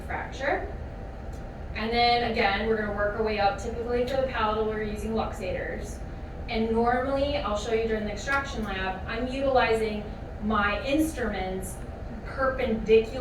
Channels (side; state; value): both; identical; correlation 1.00